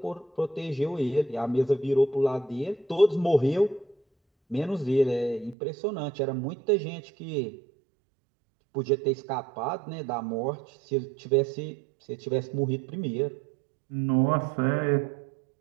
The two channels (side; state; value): left; drops out; at 5.6 s